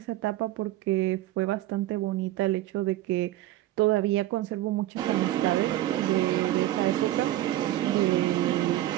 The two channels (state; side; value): quieter; left; 14.8 dB